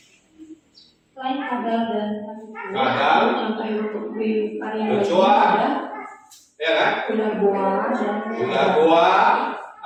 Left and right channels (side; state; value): both; identical; correlation 1.00